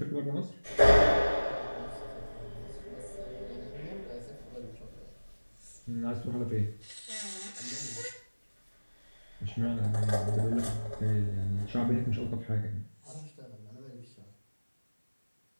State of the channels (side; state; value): both; inverted; correlation -1.00